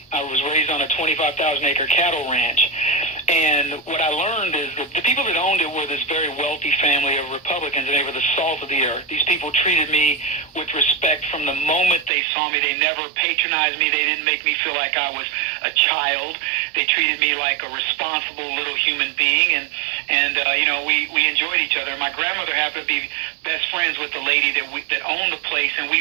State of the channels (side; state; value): left; drops out; at 12.1 s